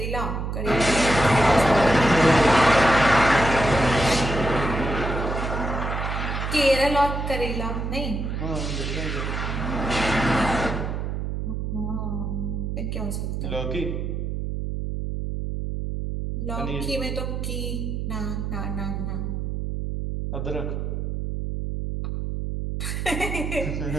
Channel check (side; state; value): right; noise; hum, 3 dB below the sound